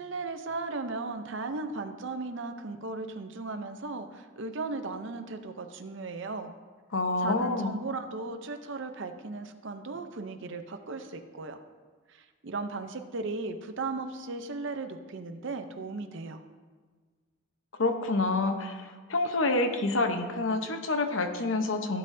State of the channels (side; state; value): both; normal; correlation -0.04